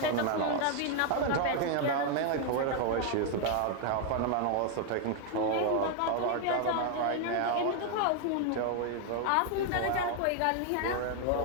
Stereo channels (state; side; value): different; both; correlation 0.00